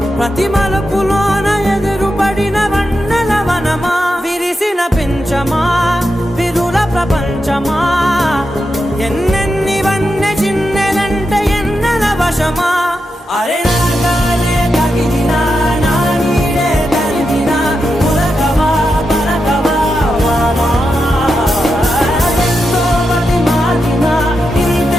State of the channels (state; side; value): normal; both; correlation 0.87